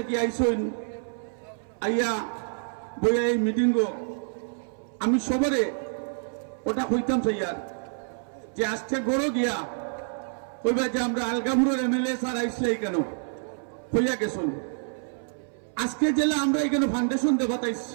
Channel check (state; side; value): silent; left; 60 dB below the other